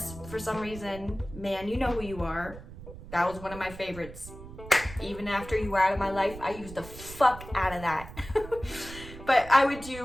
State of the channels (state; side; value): noise; right; rumble, 14 dB below the sound